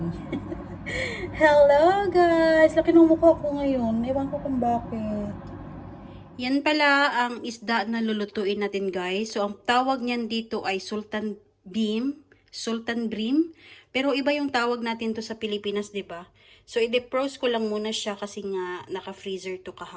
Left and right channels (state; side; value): identical; both; correlation 1.00